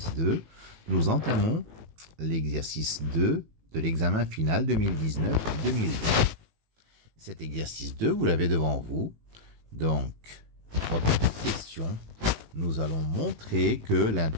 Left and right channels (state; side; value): late; left; 18 ms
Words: nous entamons l'exercice 2 de l'examen final 2019-2020. Cet exercice 2, vous l'avez devant vous. Donc, trois petites questions. Nous allons montrer que